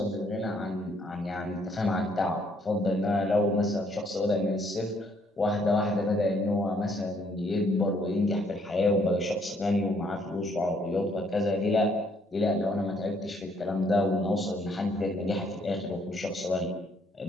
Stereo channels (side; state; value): both; normal; correlation 0.67